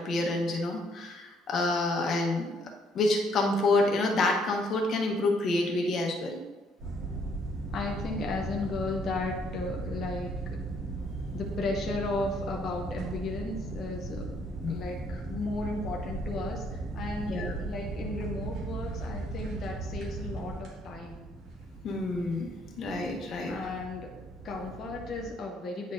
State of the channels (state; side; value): normal; both; correlation 0.67